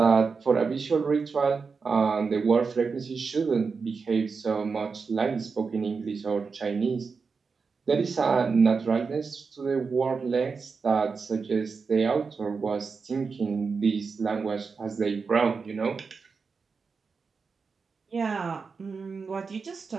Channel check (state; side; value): quieter; left; 5.0 dB